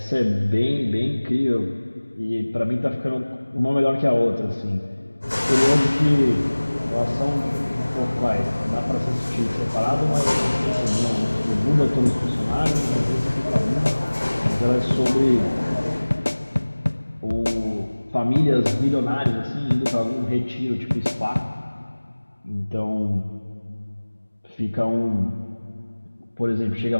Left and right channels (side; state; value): both; inverted; correlation -1.00